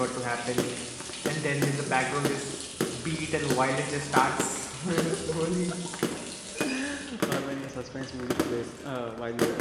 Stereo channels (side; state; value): both; identical; correlation 1.00